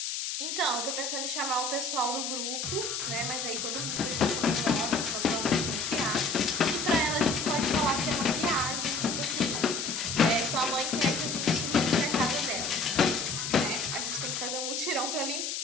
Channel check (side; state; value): left; noise; hiss, 3 dB below the sound